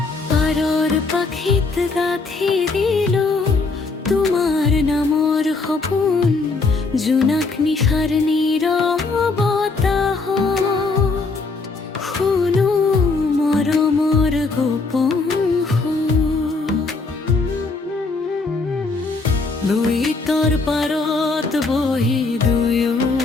পারর পাখিত গাথি দিল তোমার নামর সপোন, জোনাক নিশাৰ নীৰৱতাহ শুনো মৰমৰ গোপন সুৰ। লুইতৰ পাৰত বহি দুয়ো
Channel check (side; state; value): right; quieter; 3.9 dB